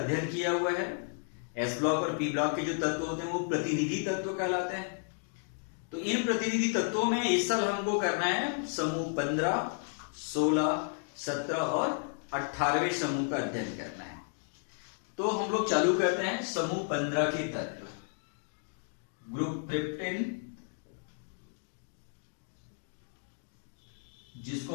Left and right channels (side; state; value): right; silent; 56 dB below the other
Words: किया हुआ है। एस ब्लॉक और पी ब्लॉक के जो तत्व होते हैं वो प्रतिनिधि तत्व कहलाते हैं। तो इन प्रतिनिधि तत्वों में इस साल हमको करना है समूह 15, 16, 17 और 18वें समूह का अध्ययन करना है। तो हम लोग चालू करते हैं समूह 15 के तत्व। ग्रुप ट्रिप्टिन,